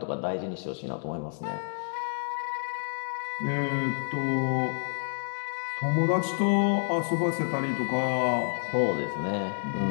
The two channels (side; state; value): right; silent; digital silence